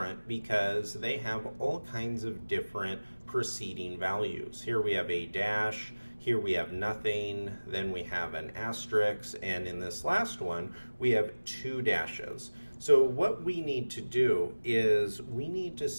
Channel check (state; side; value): inverted; both; correlation -1.00